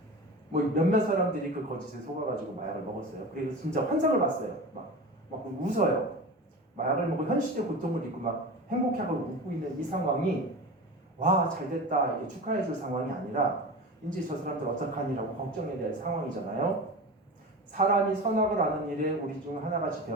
뭐 몇몇 사람들이 그 거짓에 속아가지고 마약을 먹었어요. 그리고 진짜 환상을 봤어요. 막 웃어요. 마약을 먹고 현실의 고통을 잊고 막 행복하고 웃고 있는 이 상황이 와 잘됐다 이렇게 축하해줄 상황이 아니라 이제 저 사람들 어떡하니라고 걱정해야 될 상황이잖아요. 사람이 선악을 아는 일에 우리 중 하나같이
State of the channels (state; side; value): normal; both; correlation 0.30